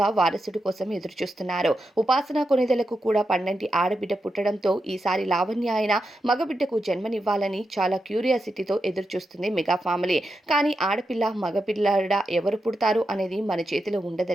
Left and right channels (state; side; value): normal; both; correlation 0.87